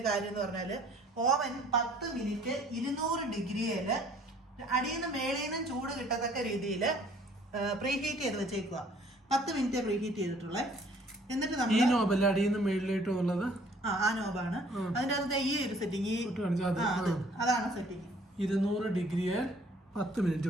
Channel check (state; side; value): normal; both; correlation 0.58